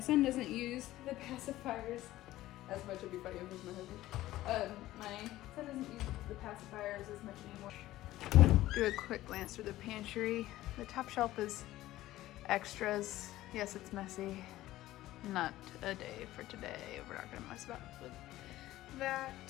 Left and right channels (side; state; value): right; quieter; 15.6 dB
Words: doesn't use the pacifiers as much. It'd be funny if it was my husband. My son doesn't use the pacifiers as much anymore. Do a quick glance through the pantry. The top shelf is extras. Yes, it's messy. Not a day for today. We're not gonna mess about with that.